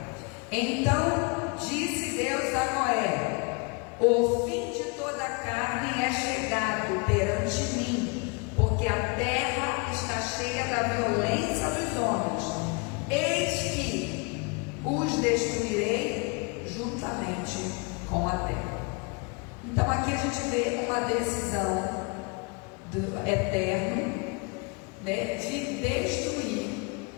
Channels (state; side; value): quieter; right; 31.0 dB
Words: Então disse Deus a Noé: o fim de toda a carne é chegado perante mim, porque a terra está cheia da violência dos homens. Eis que os destruirei juntamente com a terra. Então aqui a gente vê uma decisão do Eterno, né, de destruir